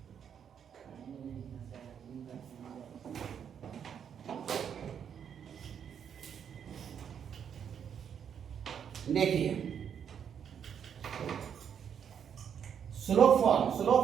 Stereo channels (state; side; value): quieter; left; 8.1 dB